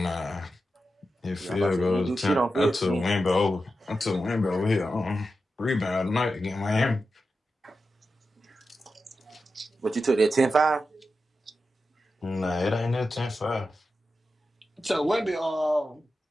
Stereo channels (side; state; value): both; normal; correlation 0.90